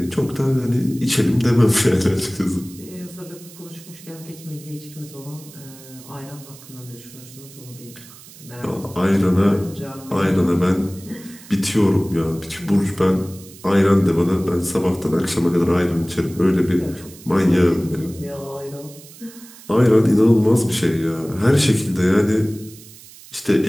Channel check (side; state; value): right; noise; hiss, 20 dB below the sound